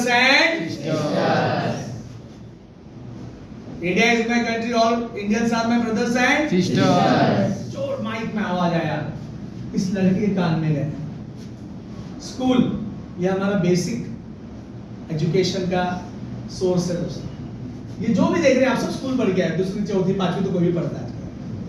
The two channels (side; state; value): both; identical; correlation 1.00